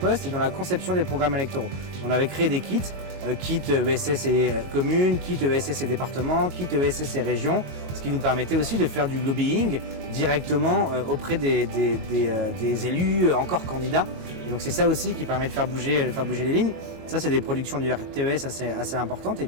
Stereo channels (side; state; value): left; late; 22 ms